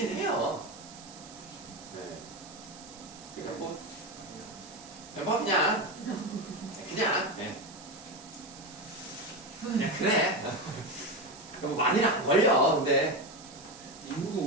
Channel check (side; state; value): right; noise; hiss, 17 dB below the sound